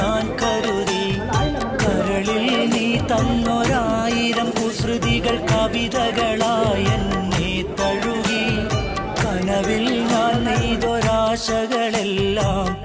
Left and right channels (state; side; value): identical; both; correlation 1.00